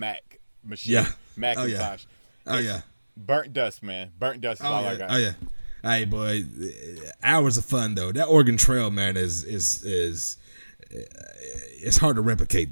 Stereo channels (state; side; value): inverted; both; correlation -1.00